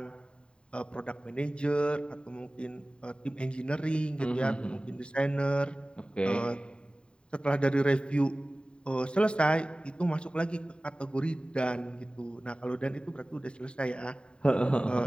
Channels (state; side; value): late; right; 0.052 ms